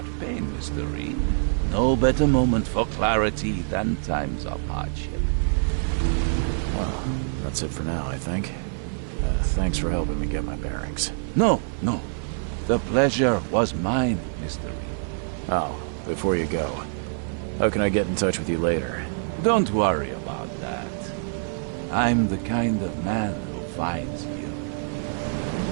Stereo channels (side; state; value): left; silent; 61 dB below the other